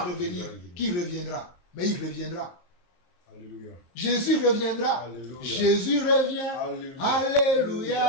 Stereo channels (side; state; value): right; late; 23 ms